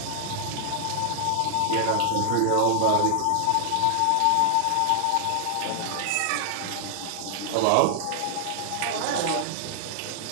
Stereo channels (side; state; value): both; different; correlation 0.00